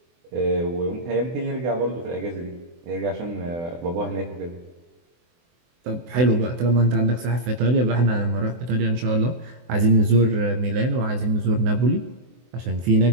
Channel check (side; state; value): left; late; 24 ms